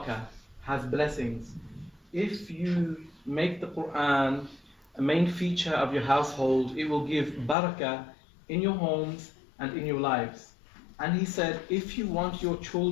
has blessings. If you make the Quran a main feature of your household, it will give barakah in your homes and in your lives. And he said, if you want your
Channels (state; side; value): drops out; right; at 7.6 s